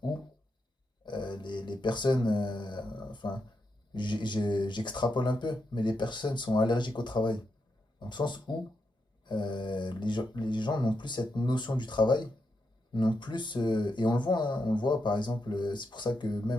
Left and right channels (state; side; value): normal; both; correlation 0.84